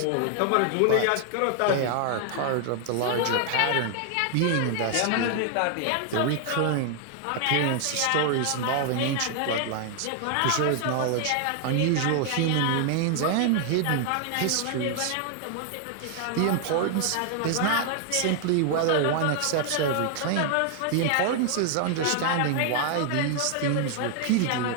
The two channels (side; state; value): both; different; correlation 0.00